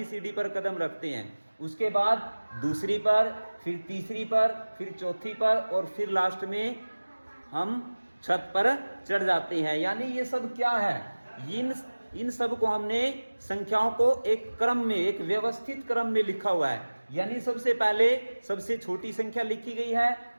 सीढ़ी पर कदम रखते हैं, उसके बाद दूसरी पर, फिर तीसरी पर, फिर चौथी पर और फिर लास्ट में हम छत पर चढ़ जाते हैं। यानी ये सब क्या है, इन सब को हमने संख्याओं को एक क्रम में, एक व्यवस्थित क्रम में लिखा हुआ है। यानी सबसे पहले सबसे छोटी संख्या लिखी गई है,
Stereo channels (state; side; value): inverted; both; correlation -1.00